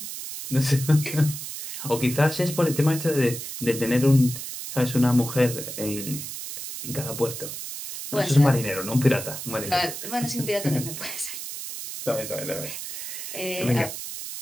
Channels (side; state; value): right; noise; hiss, 8 dB below the sound